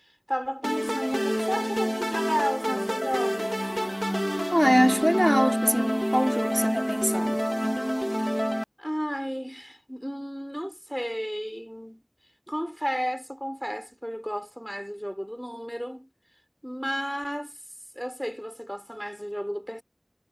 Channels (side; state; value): both; identical; correlation 1.00